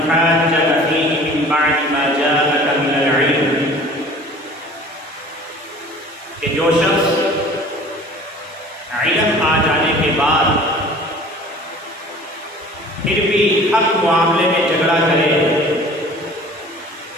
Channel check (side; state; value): both; normal; correlation 0.46